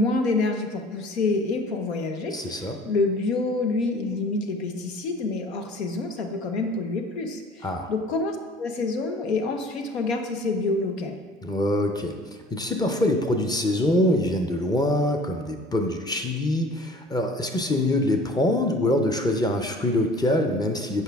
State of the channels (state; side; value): normal; both; correlation 0.49